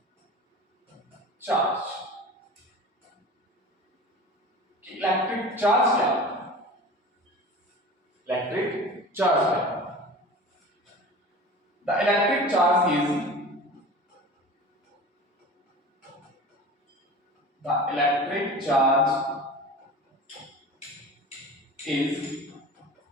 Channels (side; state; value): both; normal; correlation 0.36